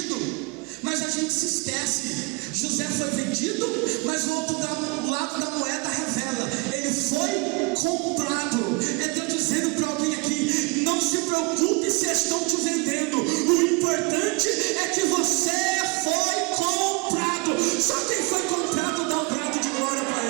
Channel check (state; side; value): quieter; left; 28.6 dB